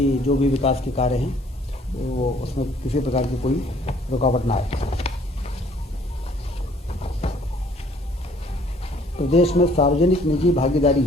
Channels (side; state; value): both; normal; correlation 0.59